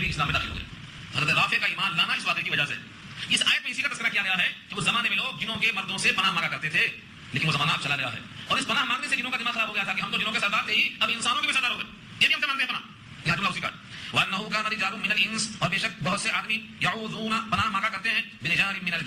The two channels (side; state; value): both; identical; correlation 1.00